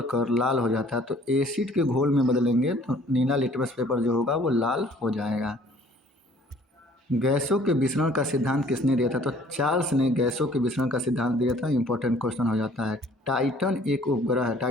कर लाल हो जाता है? तो एसिड के घोल में बदलेंगे तो नीला लिटमस पेपर जो होगा वो लाल हो जाएगा। गैसों के विसरण का सिद्धांत किसने दिया था? तो चार्ल्स ने गैसों के विसरण का सिद्धांत दिया था। इंपॉर्टेंट क्वेश्चन हो जाता है। टाइटन एक उपग्रह है।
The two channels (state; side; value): normal; both; correlation 0.56